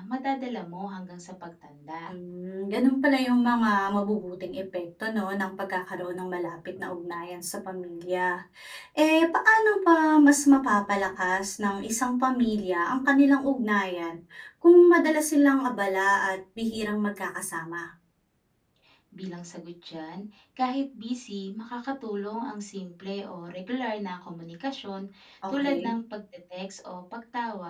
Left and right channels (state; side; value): identical; both; correlation 1.00